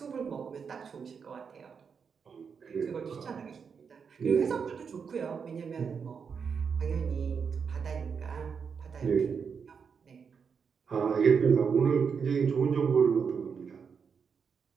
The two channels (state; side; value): quieter; left; 6.2 dB